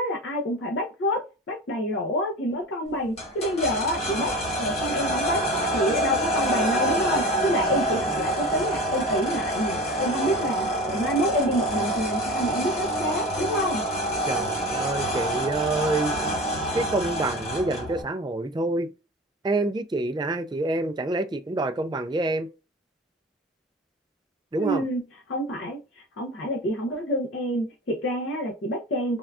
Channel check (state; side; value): normal; both; correlation 0.33